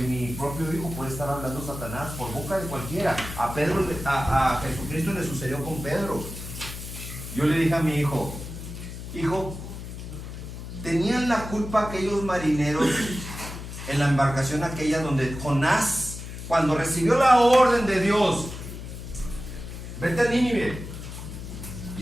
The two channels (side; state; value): left; noise; hum, 10 dB below the sound